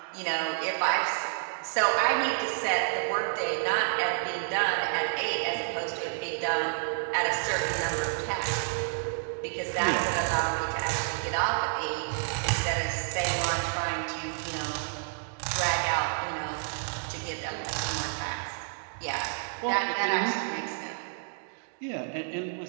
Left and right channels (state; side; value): silent; left; digital silence